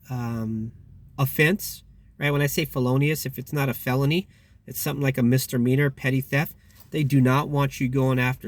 offense, right? When I say felonious, if it's not a felony, it's something like a misdemeanor, petty theft. They do not want you going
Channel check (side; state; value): both; identical; correlation 1.00